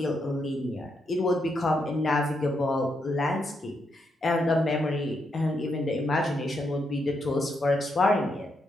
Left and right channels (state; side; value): normal; both; correlation 0.80